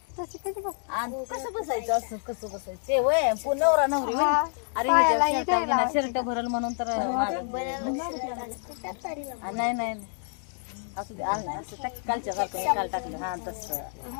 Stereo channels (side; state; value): right; silent; 58 dB below the other